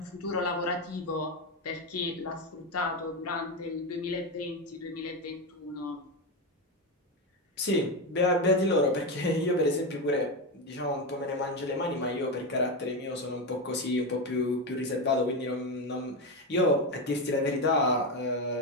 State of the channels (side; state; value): both; normal; correlation 0.13